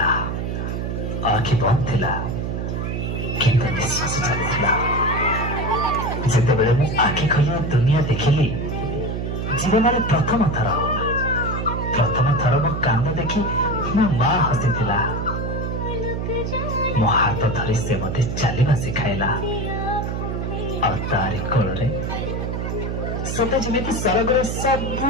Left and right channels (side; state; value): right; noise; hum, 2 dB below the sound